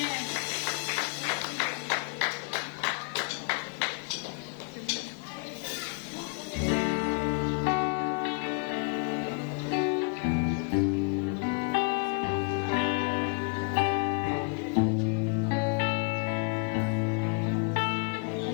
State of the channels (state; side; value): quieter; right; 38.7 dB